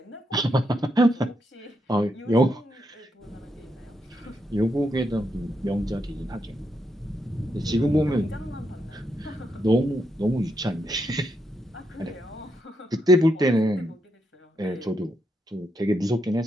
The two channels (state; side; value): normal; both; correlation 0.81